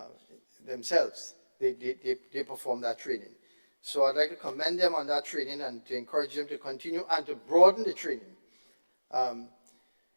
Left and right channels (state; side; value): inverted; both; correlation -1.00